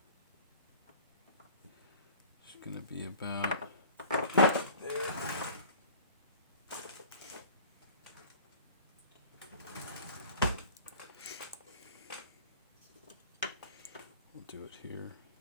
It's going to be about there. Do it here.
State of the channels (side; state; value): both; inverted; correlation -0.44